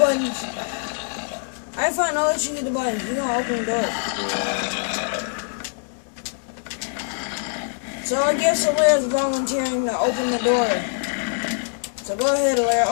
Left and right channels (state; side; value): silent; right; digital silence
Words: I find I'll let you get the buttons. You're going to open the door. So I guess Alaire's volunteering to open the door. So go ahead, Alaire,